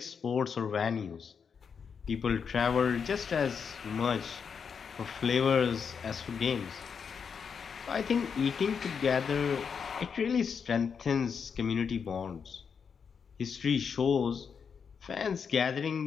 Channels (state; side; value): quieter; right; 6.4 dB